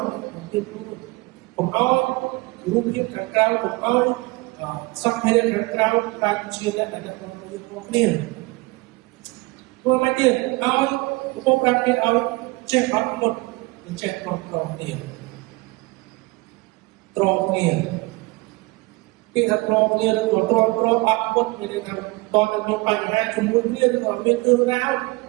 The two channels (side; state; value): left; quieter; 23.9 dB